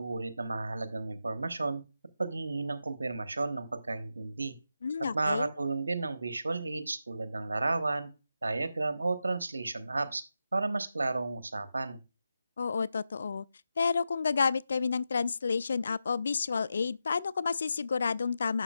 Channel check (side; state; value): both; inverted; correlation -0.88